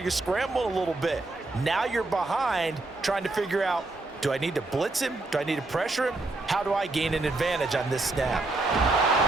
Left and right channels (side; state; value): left; quieter; 3.1 dB